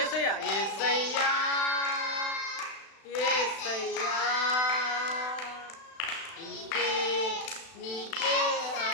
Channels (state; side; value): late; right; 36 ms